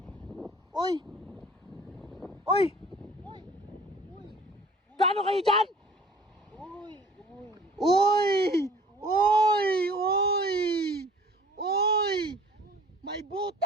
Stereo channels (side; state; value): both; normal; correlation 0.49